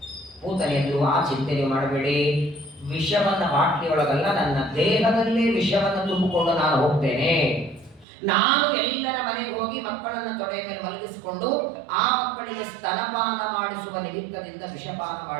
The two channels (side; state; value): left; drops out; at 8.1 s